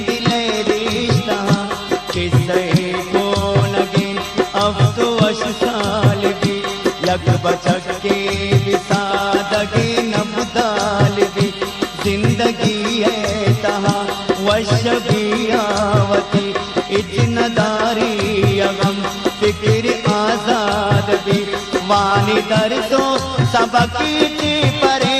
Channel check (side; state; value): both; identical; correlation 1.00